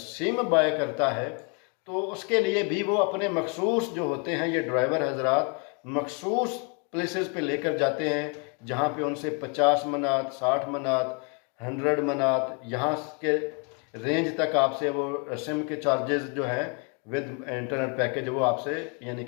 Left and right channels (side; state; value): right; quieter; 36.0 dB